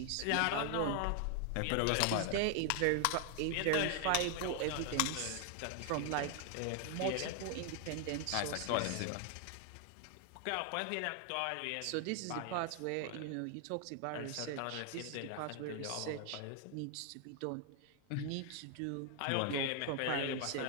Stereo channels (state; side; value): different; both; correlation 0.00